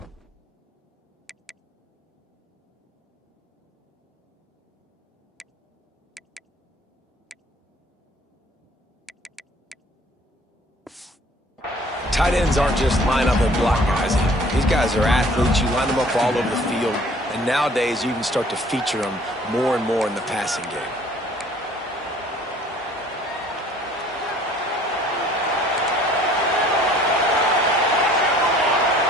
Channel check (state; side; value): normal; both; correlation 0.55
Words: Tight ends aren't just line up and block guys. These guys are athletes. You line them up all over the field. And nowadays, you can start to feature them more and more in the passing game.